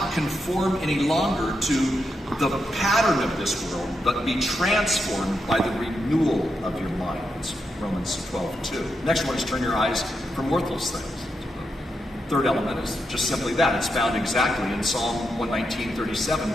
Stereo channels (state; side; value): normal; both; correlation 0.84